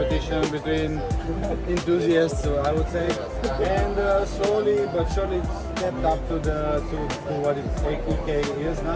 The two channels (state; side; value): identical; both; correlation 1.00